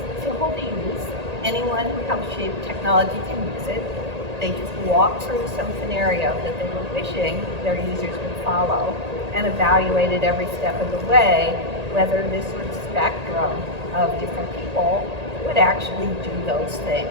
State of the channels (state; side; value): late; left; 1.8 ms